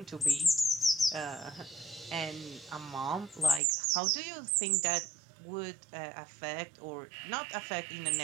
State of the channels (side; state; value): left; drops out; at 3.6 s